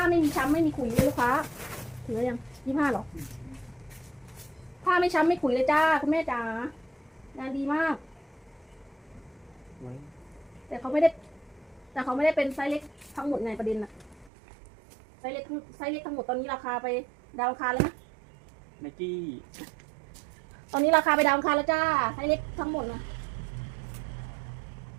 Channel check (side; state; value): left; drops out; at 14.3 s